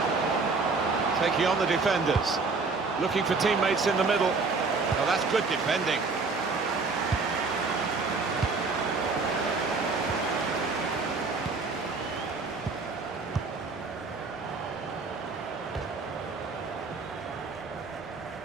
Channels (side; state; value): left; quieter; 4.2 dB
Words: Taking on the defenders. Looking for teammates in the middle. Oh, that's good defending.